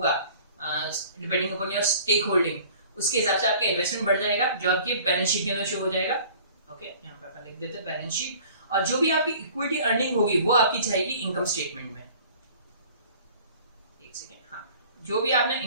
depending upon your stake holding, उसके हिसाब से आपका इन्वेस्टमेंट बढ़ जाएगा, जो आपकी बैलेंस शीट के अंदर शो हो जाएगा। ओके, यहाँ पे अपन लिख देते हैं बैलेंस शीट। और जो भी आपकी इक्विटी अर्निंग होगी वो आपकी जाएगी इनकम स्टेटमेंट में। एक सेकेंड, हाँ, जो भी आपने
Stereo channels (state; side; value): inverted; both; correlation -0.49